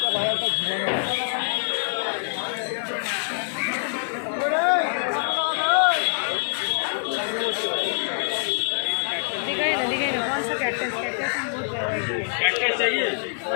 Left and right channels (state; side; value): silent; right; 62 dB below the other